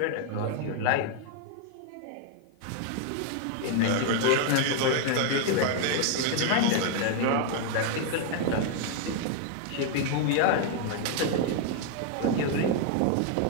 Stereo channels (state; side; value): different; both; correlation 0.00